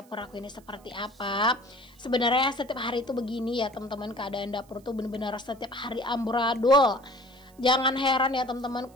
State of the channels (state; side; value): noise; right; hiss, 29 dB below the sound